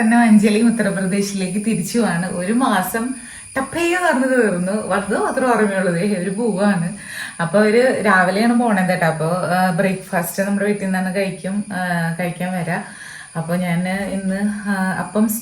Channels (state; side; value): identical; both; correlation 1.00